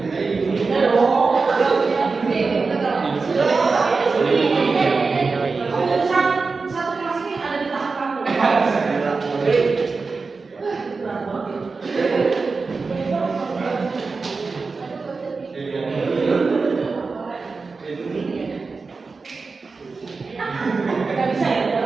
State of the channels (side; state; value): left; quieter; 4.3 dB